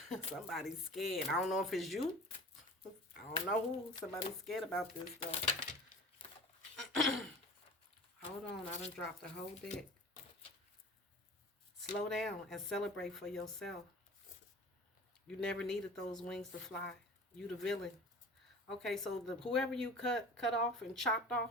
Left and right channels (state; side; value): normal; both; correlation 0.39